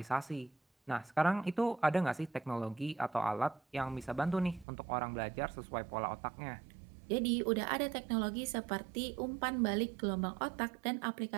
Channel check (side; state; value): left; drops out; at 4.7 s